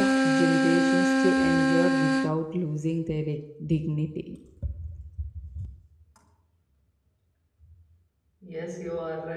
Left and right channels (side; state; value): both; identical; correlation 1.00